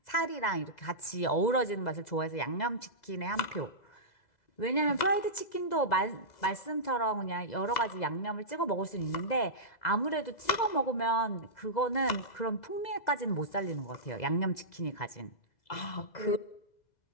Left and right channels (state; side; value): late; right; 2.0 ms